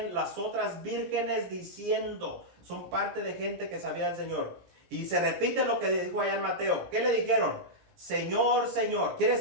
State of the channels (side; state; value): left; late; 17 ms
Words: las otras vírgenes diciendo, son parte de gente que sabía del Señor. Y se repite lo que dijo allá en Mateo. ¿Qué le dijeron? Señor, Señor. Quiere